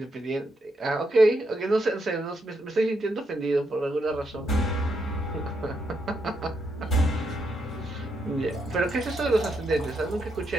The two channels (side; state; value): both; normal; correlation 0.80